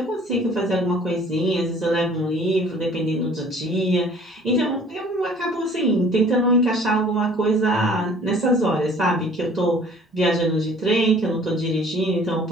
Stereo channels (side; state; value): both; normal; correlation 0.52